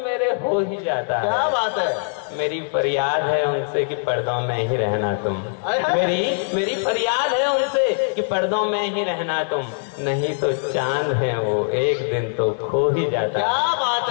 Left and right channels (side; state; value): right; silent; 64 dB below the other